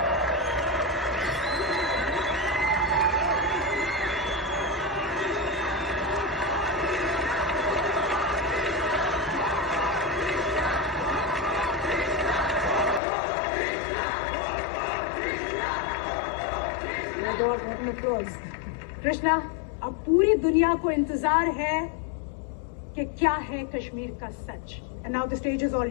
Krishna, अब पूरी दुनिया को इंतजार है कि क्या है कश्मीर का सच। And now the stage is all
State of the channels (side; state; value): right; drops out; at 13.0 s